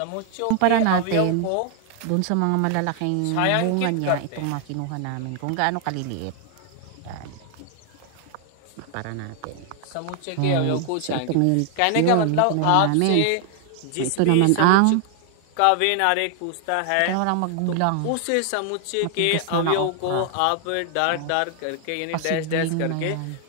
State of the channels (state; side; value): different; both; correlation 0.00